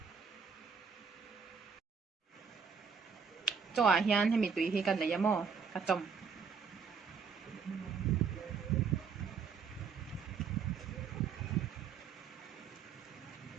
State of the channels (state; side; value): quieter; left; 5.9 dB